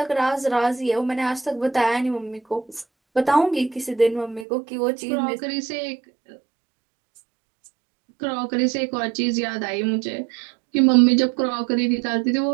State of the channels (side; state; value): left; drops out; at 4.5 s